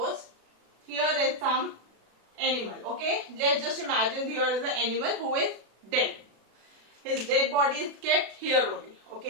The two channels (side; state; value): left; late; 36 ms